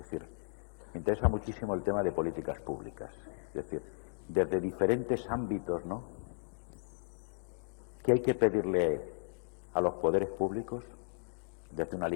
me interesa muchísimo el tema de políticas públicas, es decir, desde diferentes ámbitos, ¿no? ¿Qué hay que pedirle a los poderes públicos? Desde una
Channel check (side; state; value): right; silent; digital silence